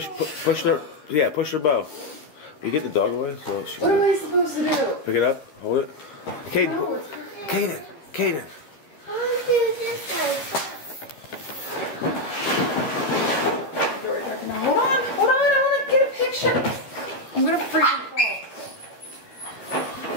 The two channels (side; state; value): right; late; 13 ms